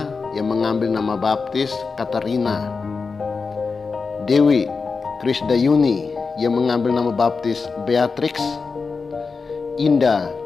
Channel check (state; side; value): quieter; right; 4.7 dB